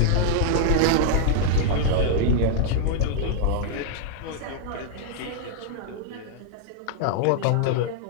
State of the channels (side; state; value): both; different; correlation -0.01